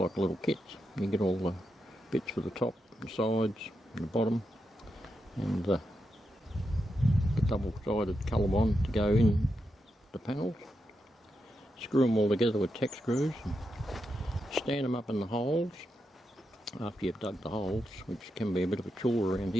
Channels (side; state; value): both; normal; correlation 0.86